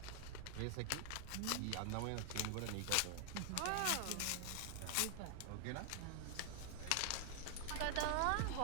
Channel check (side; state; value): both; different; correlation 0.00